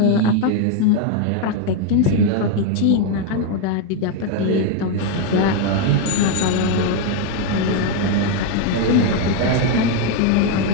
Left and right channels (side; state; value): both; different; correlation 0.01